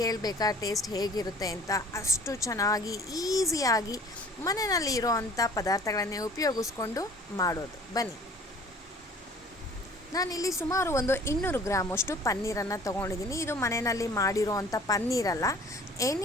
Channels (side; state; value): both; normal; correlation 0.50